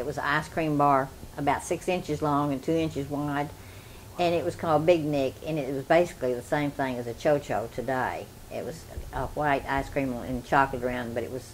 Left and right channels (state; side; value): identical; both; correlation 1.00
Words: was an ice cream bar about 6 inches long and 2 inches wide, and it was called Big Nick, and it was basically the same thing as a Cho-Cho today. It was a white ice cream and chocolate around, but it was